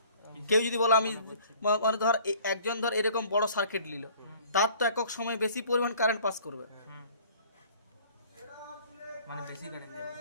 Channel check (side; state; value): both; inverted; correlation -0.52